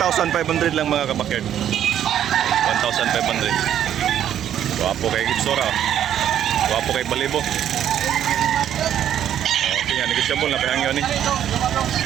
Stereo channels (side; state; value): left; quieter; 10.4 dB